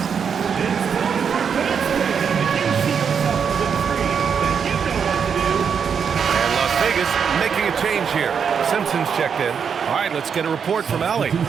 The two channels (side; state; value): left; quieter; 6.8 dB